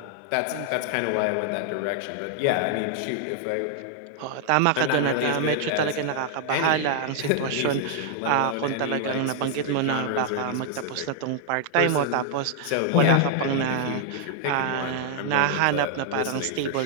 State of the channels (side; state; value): both; different; correlation 0.00